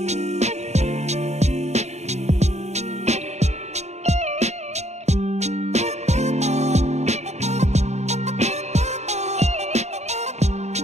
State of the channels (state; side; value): late; left; 0.32 ms